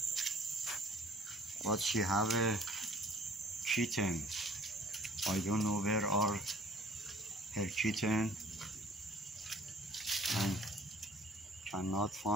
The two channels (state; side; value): normal; both; correlation 0.54